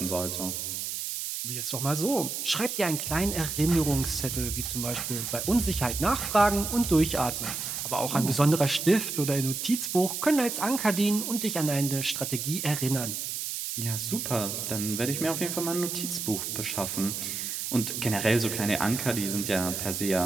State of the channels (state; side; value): noise; right; hiss, 4 dB below the sound